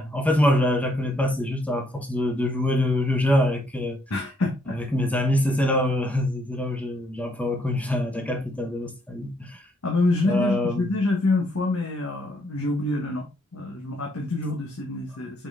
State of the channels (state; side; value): normal; both; correlation 0.71